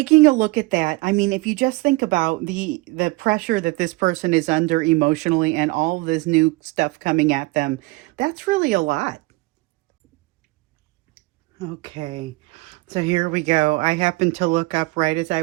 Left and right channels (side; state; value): left; quieter; 22.7 dB